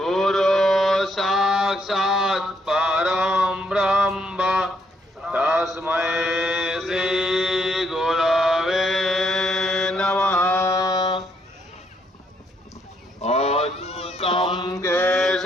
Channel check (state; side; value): normal; both; correlation 0.73